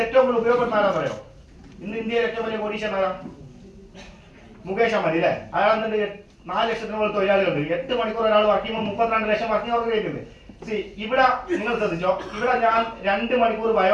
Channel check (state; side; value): identical; both; correlation 1.00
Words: ഏറ്റവും കൂടുതൽ ഉപയോഗപ്പെടുന്ന ആരാന്ന് അറിയോ? ഇന്ന് ഇന്ത്യയിൽ ഏറ്റവും വലിയ കോടീശ്വരൻ ആരാ? മുകേഷ് അംബാനി അല്ലെ? അയാൾ എന്നിട്ട് 4 ലക്ഷത്തിന് മുകളിൽ തൊഴിലാളികളുണ്ട്. 8 മണിക്കൂർ ഒരാൾ വർക്ക് ചെയ്യുമ്പോൾ 32 ലക്ഷം വർക്കിംഗ് അവർ കഴിക്കുന്നത്. ഇവിടെ നിങ്ങൾ ശ്രദ്ധിച്ചോ, ഇവിടെ ഞാൻ 2 മണിക്കൂർ